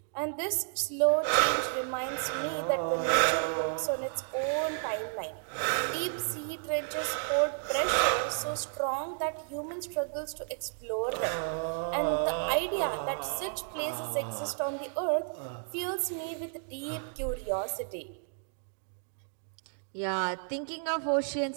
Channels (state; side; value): silent; left; digital silence